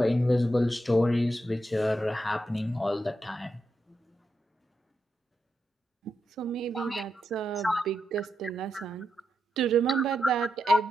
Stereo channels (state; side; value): normal; both; correlation 0.85